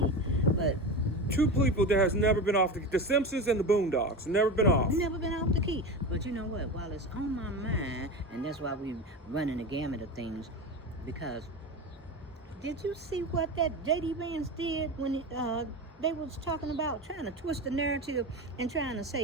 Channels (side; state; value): both; normal; correlation 0.25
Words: But two people that has never been off the Simpsons and the Boondocks, never been off. Never been off the key. But you know what? While it's on my mind, and that's why we running the gamut of things, because did you see what that JD Vance did when they was talking about trying to twist the narrative and trying to